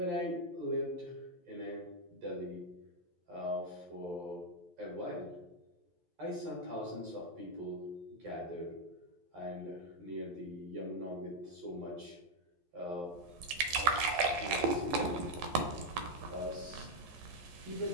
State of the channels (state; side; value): late; left; 11 ms